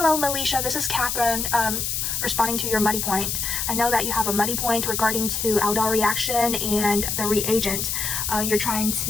Melisha. This is Catherine. Responding to your muddy point. I know that you have a muddy point regarding to aldol reaction and the reagent. You're trying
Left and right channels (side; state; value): left; noise; hiss, 1 dB below the sound